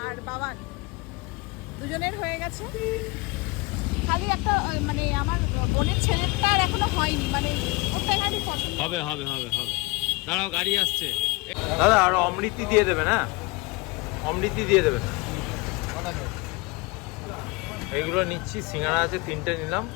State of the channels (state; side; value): quieter; right; 25.2 dB